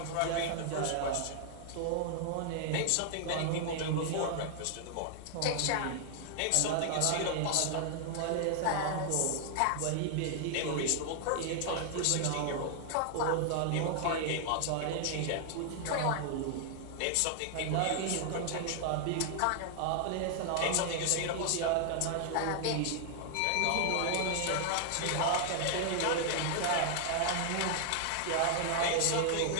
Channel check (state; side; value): different; both; correlation 0.00